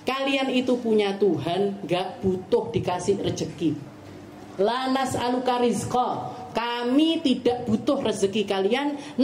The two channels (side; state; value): both; identical; correlation 1.00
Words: kalian itu punya Tuhan, gak butuh dikasih rezeki. La nas'aluka rizqa, kami tidak butuh rezeki kalian,